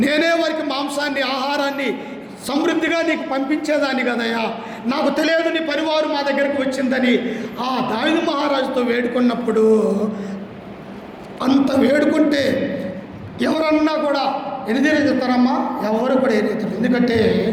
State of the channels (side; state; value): both; identical; correlation 1.00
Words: నేనే వారికి మాంసాన్ని, ఆహారాన్ని సమృద్ధిగా నీకు పంపించేదాన్ని కదయ్యా, నాకు తెలియదు నీ పరివారు మా దగ్గరకు వచ్చిందని ఆ దావీదు మహారాజుతో వేడుకున్నప్పుడు, అంత వేడుకుంటే ఎవరన్నా కూడా ఎనిదిరుతారమ్మా? ఎవరు కూడా ఎనిదిరు. ఎందుకంటే